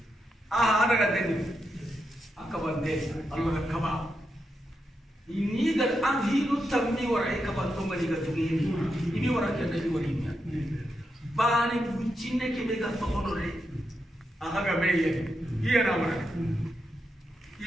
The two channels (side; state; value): both; normal; correlation 0.85